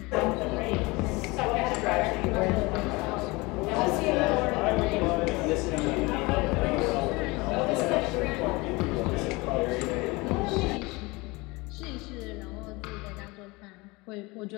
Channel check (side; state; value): right; quieter; 24.1 dB